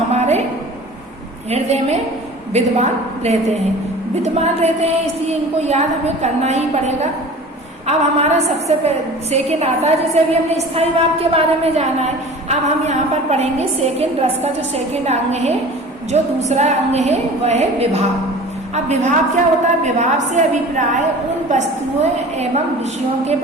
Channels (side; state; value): both; normal; correlation 0.41